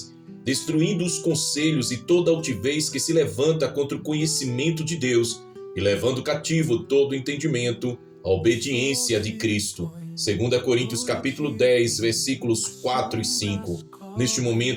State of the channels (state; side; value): identical; both; correlation 1.00